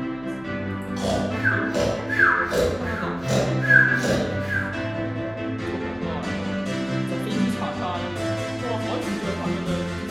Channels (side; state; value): left; noise; hum, 22 dB below the sound